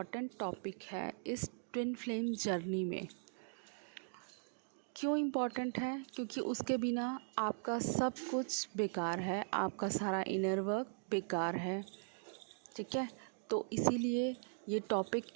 टॉपिक है इस ट्विन फ्लेम जर्नी में। क्यों इम्पॉर्टेंट है? क्योंकि उसके बिना आपका सब कुछ बेकार है, आपका सारा इनर वर्क बेकार है। ठीक है, तो इसीलिए ये टॉपिक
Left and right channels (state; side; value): silent; left; digital silence